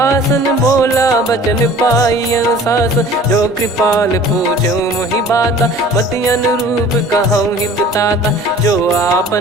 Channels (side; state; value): both; normal; correlation 0.47